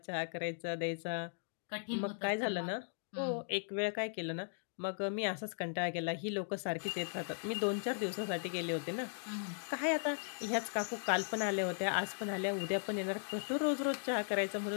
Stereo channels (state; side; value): silent; right; digital silence